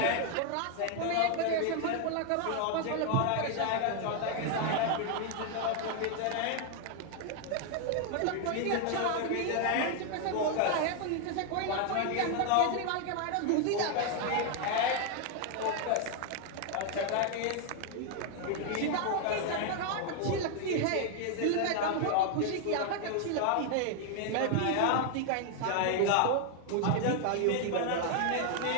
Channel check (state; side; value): different; both; correlation 0.01